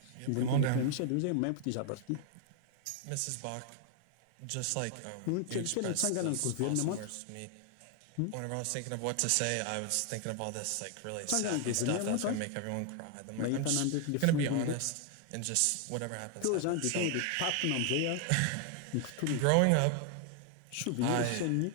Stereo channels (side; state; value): both; different; correlation 0.00